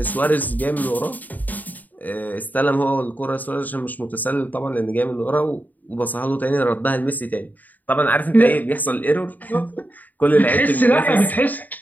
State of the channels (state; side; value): late; right; 0.083 ms